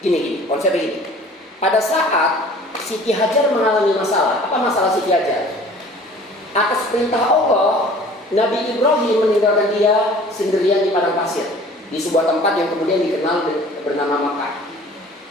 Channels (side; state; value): both; normal; correlation 0.48